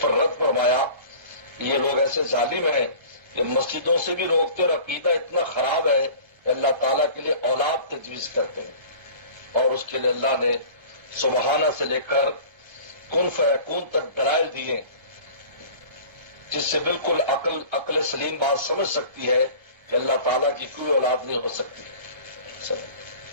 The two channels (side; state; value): left; late; 1.3 ms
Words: پر رد فرمایا. یہ لوگ ایسے ظالم ہیں کہ مسجدوں سے بھی روکتے اور عقیدہ اتنا خراب ہے کہ اللہ تعالیٰ کے لیے اولاد تجویز کرتے ہیں. اور اس کے لیے اللہ نے سبحانہ سے لے کر کن فیکون تک دلائل دیے جس سے بالکل عقل سلیم بات سمجھ سکتی ہے کہ اللہ تعالیٰ کی کوئی اولاد نہیں ہو سکتی.